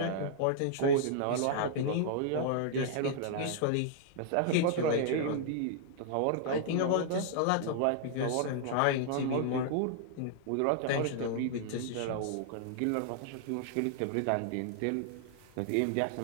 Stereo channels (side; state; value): both; different; correlation -0.01